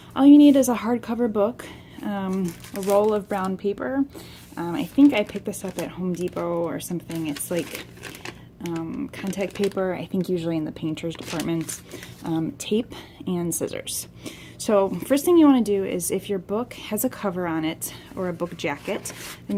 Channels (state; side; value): identical; both; correlation 1.00